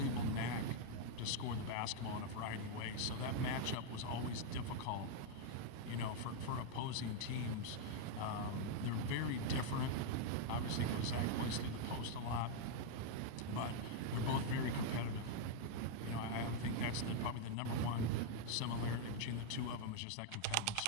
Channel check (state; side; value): different; both; correlation 0.00